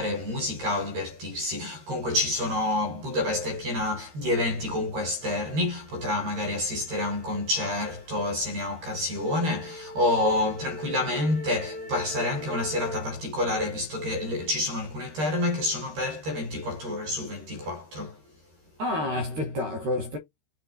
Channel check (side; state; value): left; late; 13 ms